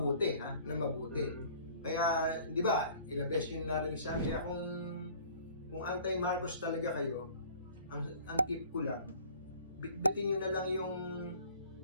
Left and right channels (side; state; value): both; inverted; correlation -0.50